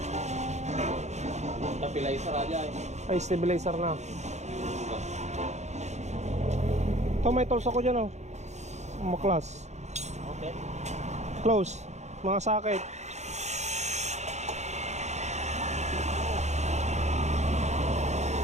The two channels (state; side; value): late; left; 0.33 ms